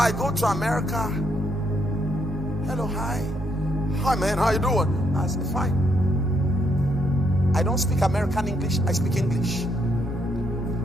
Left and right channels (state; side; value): noise; left; rumble, 15 dB below the sound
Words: go to America. Hello, hi. Hi man, how you doing? I say, fine. I don't speak American English, I speak English.